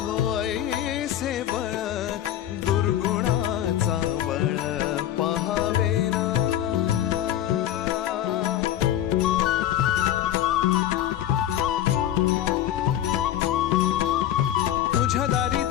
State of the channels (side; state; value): right; quieter; 11.8 dB